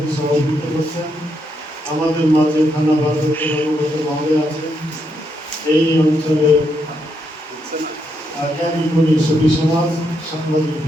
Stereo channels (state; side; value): normal; both; correlation 0.79